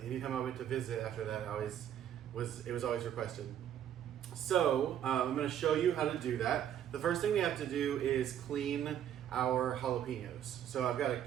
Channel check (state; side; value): quieter; left; 10.2 dB